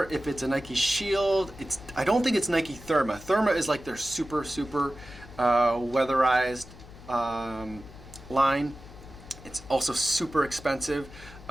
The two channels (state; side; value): noise; left; hum, 18 dB below the sound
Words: if it's a Nike Shield. I don't think it's Nike Therma. Therma is like their super weatherized line. It's also super expensive,